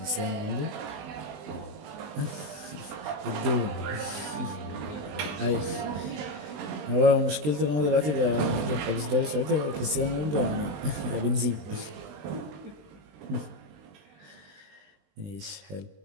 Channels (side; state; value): left; late; 20 ms